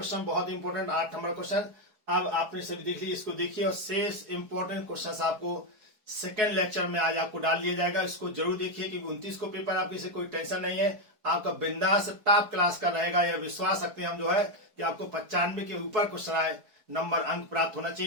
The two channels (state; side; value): late; left; 4.6 ms